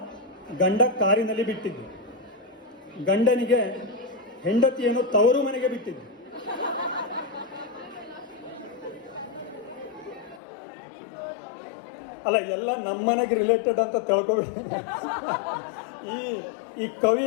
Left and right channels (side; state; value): right; drops out; at 10.4 s